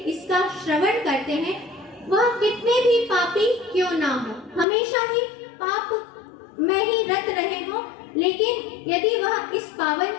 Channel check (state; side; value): drops out; right; at 4.7 s